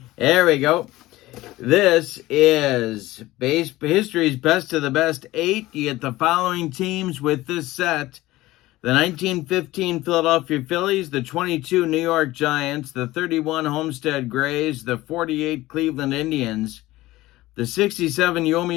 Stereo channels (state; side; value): quieter; right; 17.7 dB